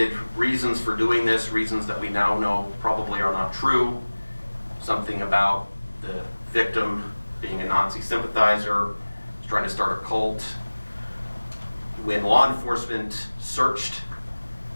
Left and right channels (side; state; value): both; inverted; correlation -1.00